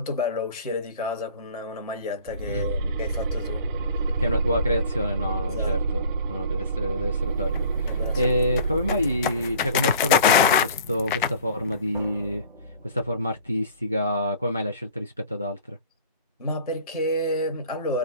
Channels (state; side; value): inverted; both; correlation -0.48